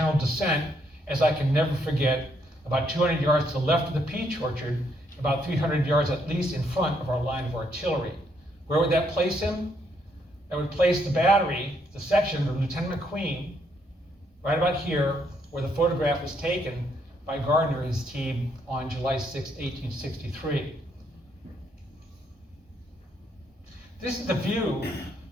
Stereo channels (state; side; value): normal; both; correlation 0.73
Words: descent, as I can never forget, about 200 yards to the left of the peach orchard, about 300 yards at least in front of our line of artillery. Where would that place him? That would place the battery, the section of Lieutenant McQueen, right about here, where the photograph was taken by Gardner and his team on July 6, 1863. This is the view